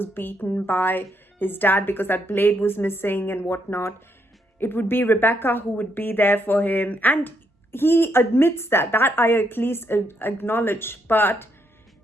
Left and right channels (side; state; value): both; normal; correlation 0.76